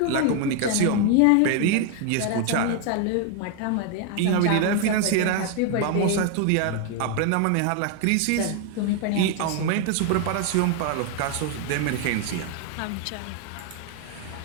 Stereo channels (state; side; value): different; both; correlation 0.01